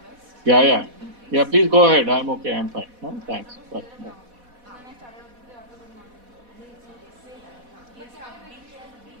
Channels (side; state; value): left; late; 4.1 ms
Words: Yeah. Yeah. Please go ahead. I'm okay. I'm fine. Thanks. Bye.